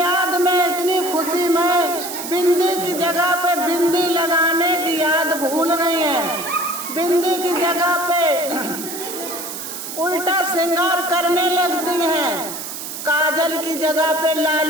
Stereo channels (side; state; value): right; noise; hiss, 8 dB below the sound